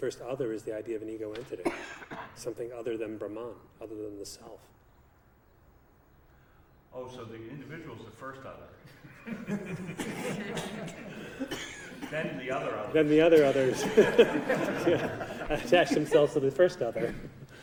other is the idea of an ego entity, something other than Brahman, other than the self. Oh, so the individual is the first other. Then the other others. Then the other others attach themselves to the first other.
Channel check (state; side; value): identical; both; correlation 1.00